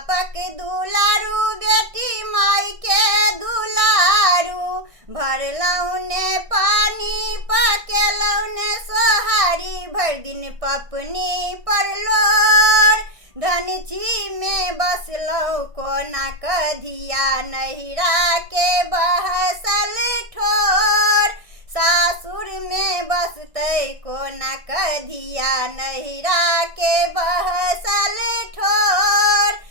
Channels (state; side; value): late; left; 1.6 ms